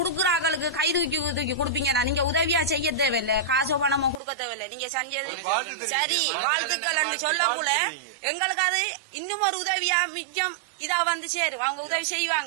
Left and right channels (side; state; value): left; drops out; at 4.2 s